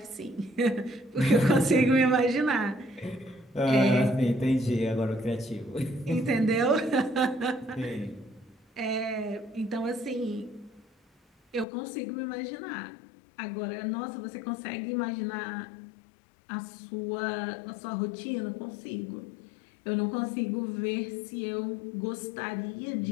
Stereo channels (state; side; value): drops out; right; at 11.7 s